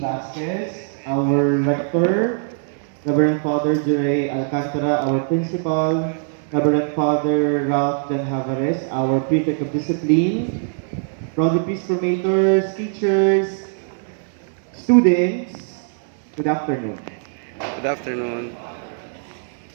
our rector, Reverend Father Jure Alcantara, our principal, Reverend Father Ralph Dan Havares, our prefect of discipline, brother priest formators, teachers, students, good afternoon. Good afternoon.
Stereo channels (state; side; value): silent; left; 63 dB below the other